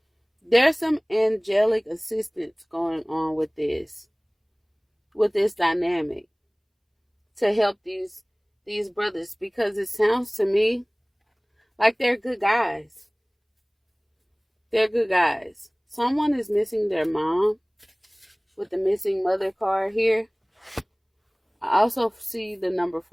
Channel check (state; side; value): identical; both; correlation 1.00